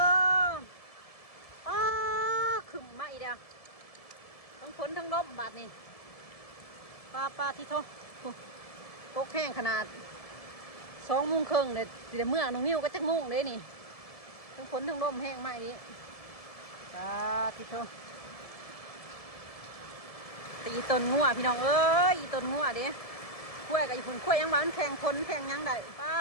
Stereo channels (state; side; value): late; right; 1.7 ms